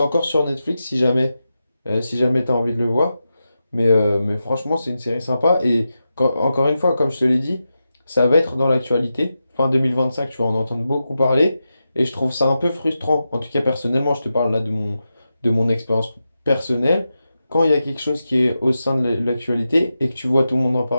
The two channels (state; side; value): inverted; both; correlation -0.90